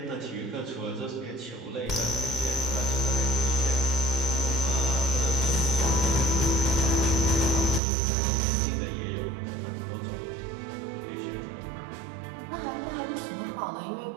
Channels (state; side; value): drops out; left; at 7.8 s